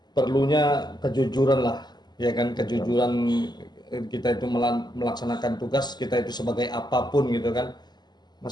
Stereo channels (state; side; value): late; right; 0.21 ms